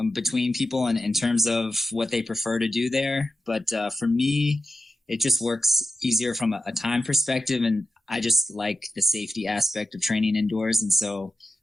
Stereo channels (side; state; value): both; normal; correlation 0.90